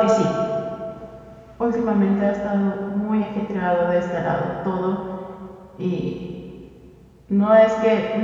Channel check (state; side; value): identical; both; correlation 1.00